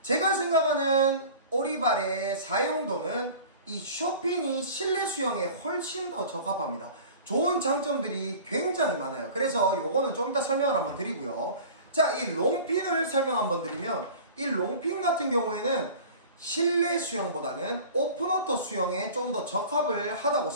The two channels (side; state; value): both; inverted; correlation -0.41